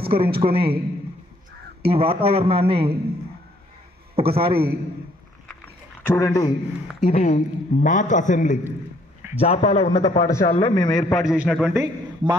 ఈ వాతావరణాన్ని ఒకసారి చూడండి. ఇది మాక్ అసెంబ్లీ, జాపాల ఉన్నత పాఠశాలలో మేము ఏర్పాటు చేసినటువంటి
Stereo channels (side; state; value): both; normal; correlation 0.65